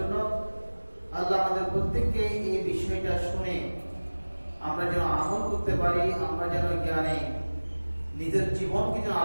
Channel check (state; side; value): inverted; both; correlation -1.00